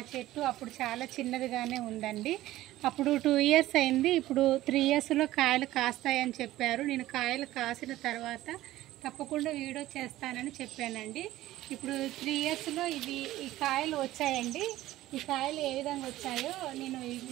చెట్టు అప్పుడు చాలా చిన్నదిగానే ఉందండి. అప్పుడు 2 ఇయర్స్ అయింది. ఇప్పుడు 3 ఇయర్స్లో కాయలు కాస్తాయని చెప్పారు. నేను కాయలు కాసిన తర్వాత తప్పకుండా వీడియో చేస్తానని చెప్పానండి. ఇప్పుడు 3 ఇయర్స్లో ఈ కాయలు వచ్చాయండి. ఈ కాయలు ఏ విధంగా వచ్చాయో నేను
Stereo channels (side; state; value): left; quieter; 15.6 dB